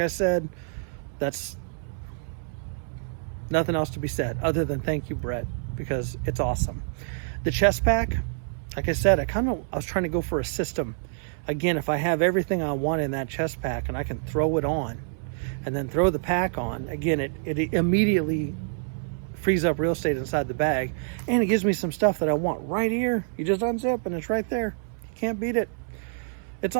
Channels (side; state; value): left; silent; 60 dB below the other